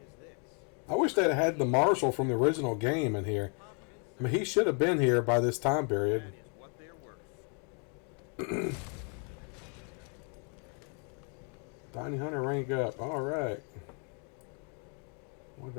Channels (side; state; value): right; quieter; 39.4 dB